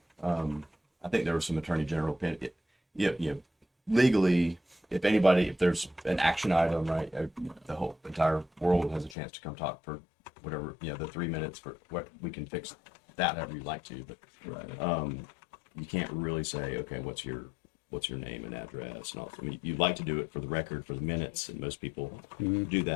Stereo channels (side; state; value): right; drops out; at 9.2 s